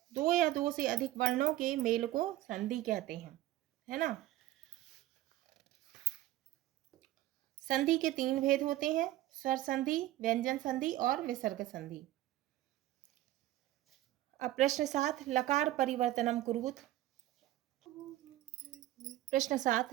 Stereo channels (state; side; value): quieter; left; 15.0 dB